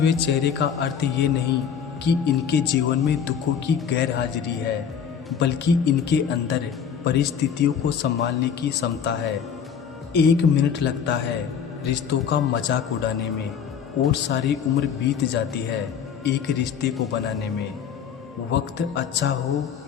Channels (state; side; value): quieter; right; 7.5 dB